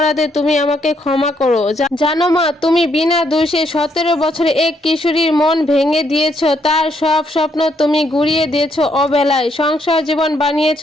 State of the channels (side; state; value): both; normal; correlation 0.73